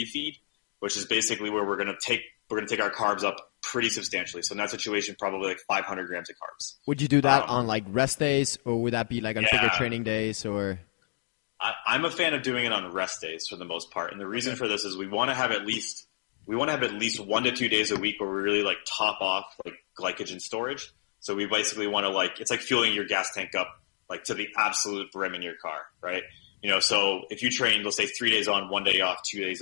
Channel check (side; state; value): right; silent; digital silence